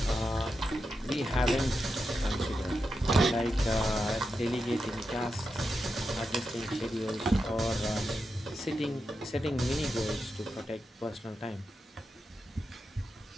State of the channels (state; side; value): normal; both; correlation 0.88